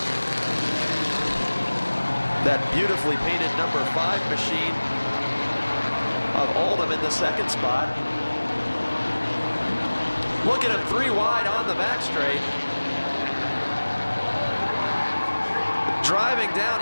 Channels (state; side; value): inverted; both; correlation -1.00